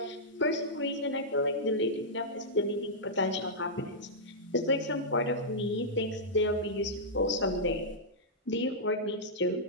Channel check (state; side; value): normal; both; correlation -0.10